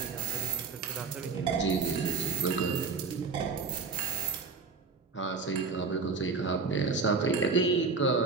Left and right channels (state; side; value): quieter; left; 4.6 dB